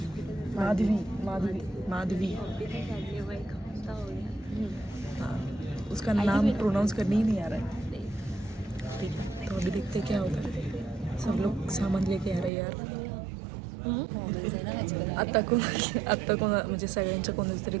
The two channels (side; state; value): left; drops out; at 12.5 s